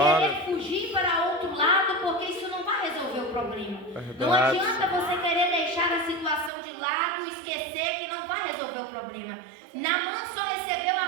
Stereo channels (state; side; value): drops out; left; at 6.5 s